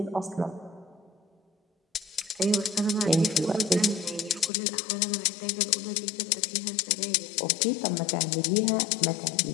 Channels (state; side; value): drops out; right; at 4.5 s